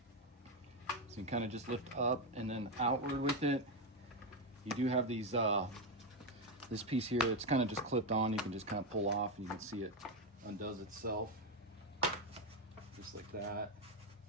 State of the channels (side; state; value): both; normal; correlation 0.07